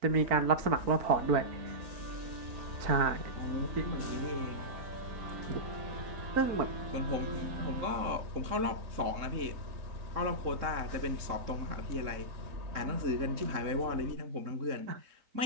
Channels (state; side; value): late; left; 3.7 ms